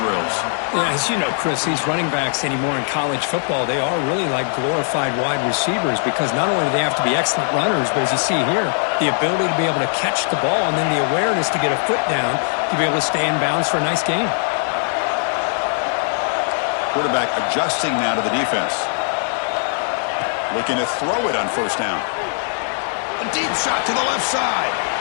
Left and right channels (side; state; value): right; silent; 66 dB below the other